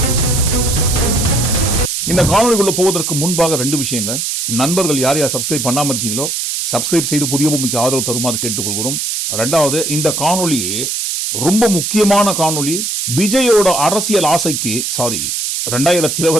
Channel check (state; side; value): noise; right; hiss, 2 dB below the sound